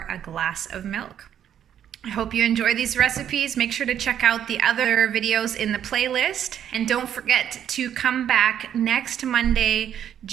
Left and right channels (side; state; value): left; quieter; 9.7 dB